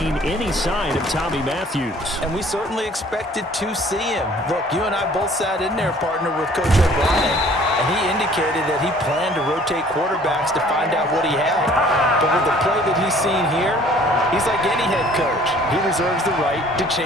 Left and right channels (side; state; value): both; normal; correlation 0.54